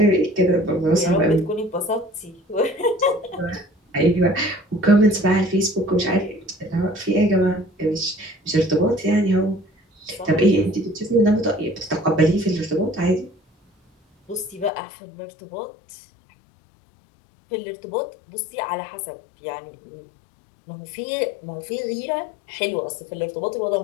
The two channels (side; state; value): right; drops out; at 14.7 s